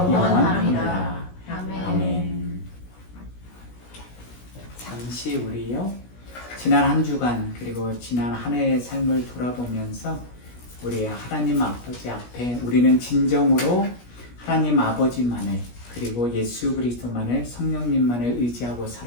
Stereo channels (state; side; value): late; right; 17 ms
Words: 아멘. 잠시 우리요 지난 한 주간 그리고 지난 한 해의 삶을 돌아보면서 우리 하나님 아버지 앞에 우리는 진정으로 하나님 아버지만을 그리고 예수 그리스도만을 성령님만을 의지하고